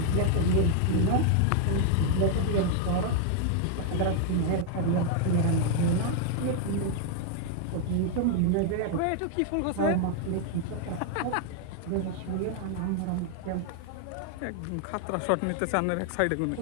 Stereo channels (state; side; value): different; both; correlation 0.00